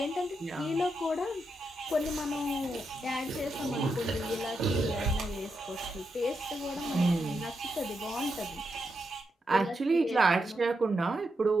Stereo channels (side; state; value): both; normal; correlation 0.84